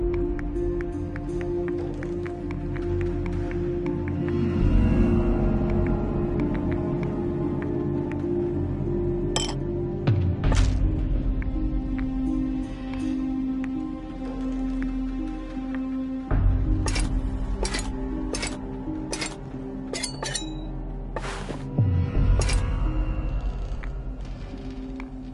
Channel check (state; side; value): identical; both; correlation 1.00